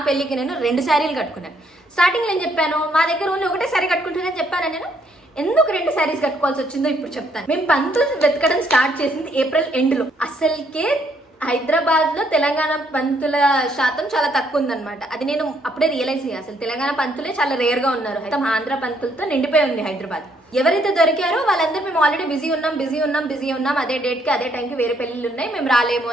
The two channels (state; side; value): normal; both; correlation 0.70